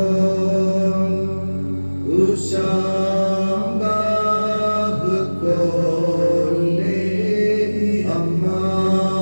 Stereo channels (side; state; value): both; inverted; correlation -1.00